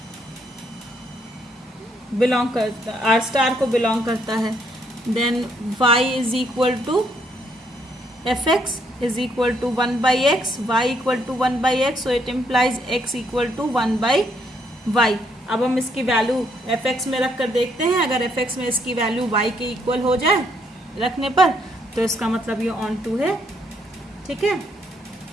बिलोंग करता, r स्टार को बिलोंग करता है। Then y is equal to fx is equal to 1 by x, y equal to 1 by x, so it implies x equal to 1 by y। अब हम इसकी वैल्यू fx में रख कर देखते हैं। अगर fx में इसकी वैल्यू y के इक्वल हो जाए रखने पर, तो इसका मतलब ये ऑन टू है। ठीक है,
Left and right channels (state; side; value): normal; both; correlation 0.72